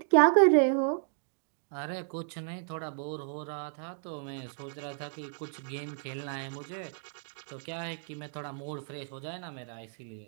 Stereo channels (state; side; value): silent; left; digital silence